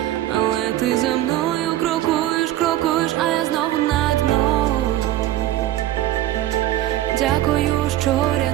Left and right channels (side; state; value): left; quieter; 13.8 dB